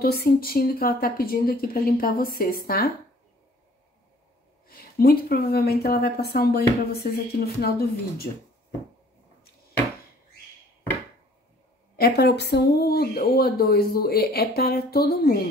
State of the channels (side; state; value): both; normal; correlation 0.55